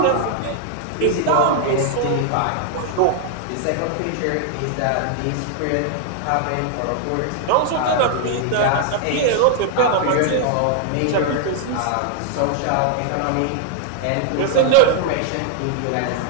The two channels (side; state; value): both; different; correlation 0.00